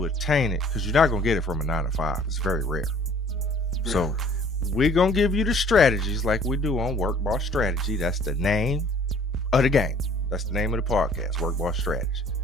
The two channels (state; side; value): normal; both; correlation 0.54